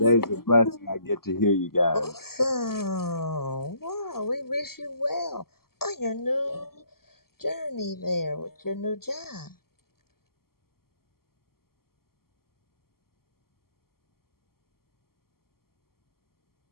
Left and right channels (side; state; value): right; late; 0.93 ms